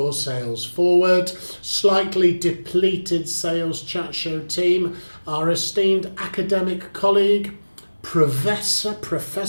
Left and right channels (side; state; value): both; inverted; correlation -1.00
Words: sales forward. Slightly depleted Sales Chat Show team, our esteemed academic colleague, Professor